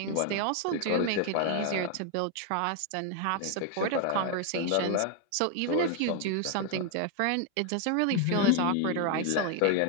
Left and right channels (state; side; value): different; both; correlation 0.00